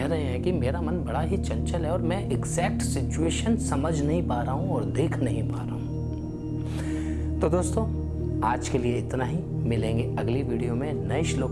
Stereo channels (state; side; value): identical; both; correlation 1.00